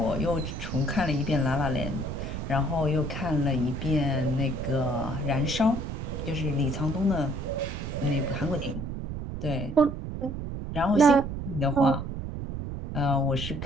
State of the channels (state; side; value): noise; right; rumble, 6 dB below the sound